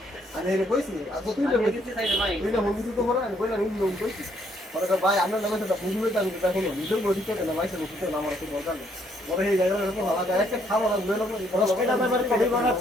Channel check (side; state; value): both; normal; correlation 0.69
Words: আর এই কইছি আচ্ছা তুই আমি দিতে চাই ভাই তুই না মুভি তো পড়া আমি কইলা নি লোক কইছি পরে ভাই আমরা নামে তো বুঝবে তো আমি দেখো না নিজের বডি তো না ভাই সে মুখে না আমার তো দরকার নেই পরে এই জায়গাটা তো ভালো যায় একটা খাওয়া না লয়ে লোক 10 টাকা দামের কফি